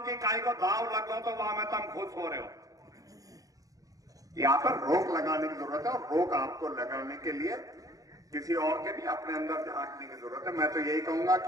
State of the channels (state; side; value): late; left; 0.17 ms